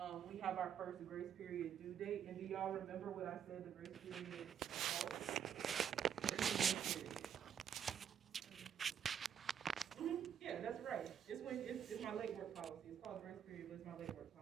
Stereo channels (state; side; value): quieter; left; 8.6 dB